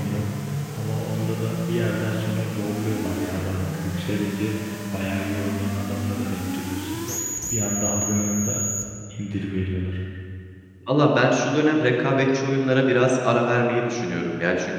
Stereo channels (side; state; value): both; identical; correlation 1.00